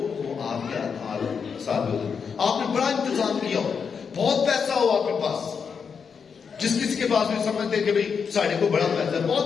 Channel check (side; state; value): right; quieter; 6.2 dB